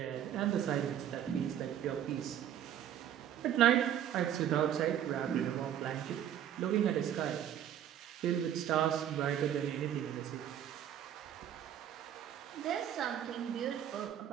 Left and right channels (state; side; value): quieter; left; 10.3 dB